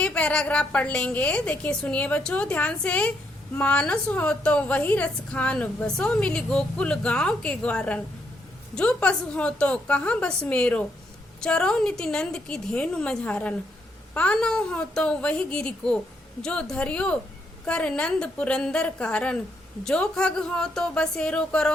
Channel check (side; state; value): both; normal; correlation 0.76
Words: पैराग्राफ पढ़ लेंगे। देखिए सुनिए बच्चों ध्यान से। मानस हो तो वही रस खान, बसो मिली गोकुल गांव के ग्वारन। जो पशु हो तो कहाँ बस मेरो, चरो निति नंद की धेनु मझारन। पानो हो तो वही गिरी को, जो धरियो कर नंद पुरंदर कारण। जो खग हो तो बसेरो